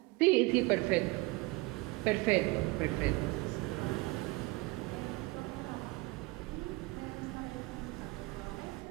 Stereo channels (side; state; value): left; quieter; 23.3 dB